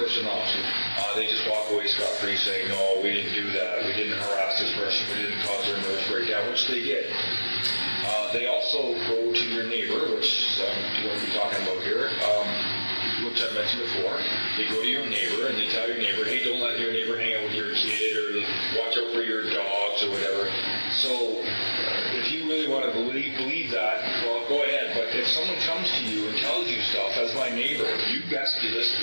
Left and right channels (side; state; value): both; inverted; correlation -1.00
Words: off. They just walk away scot-free saying, no, we didn't do that, we didn't harass this person, we didn't cause their nervous breakdown, which they did. They also go to your neighbor, which I'm going to be talking about here, which I mentioned before. They go to your neighbor and they tell your neighbor, hey, don't let your neighbor hang out with your kid, or watch out for your dogs or whatever. So if you really want to believe that, well, go ahead. But if someone comes to you and tells you stuff as my neighbor, you best be